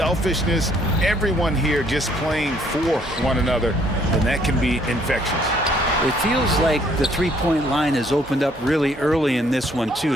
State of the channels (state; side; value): normal; both; correlation 0.64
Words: everyone here just playing for one another, and that can be infectious. It feels like the three-point line has opened up really early in this one, too.